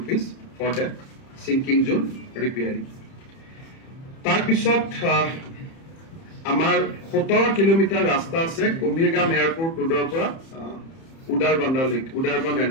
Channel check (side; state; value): right; late; 30 ms